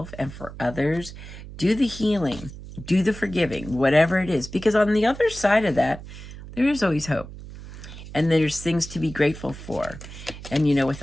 and for others. Do the healing, do the forgiving, whatever it is, because on the other side of that, there is always hope. And there's things to be grateful for. And, with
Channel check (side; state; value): right; noise; hum, 14 dB below the sound